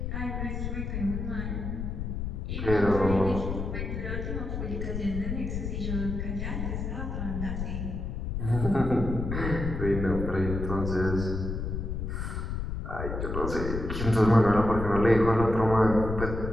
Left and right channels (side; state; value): left; noise; rumble, 4 dB below the sound